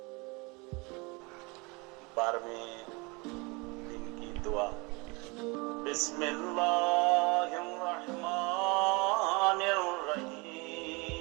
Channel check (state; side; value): quieter; left; 27.6 dB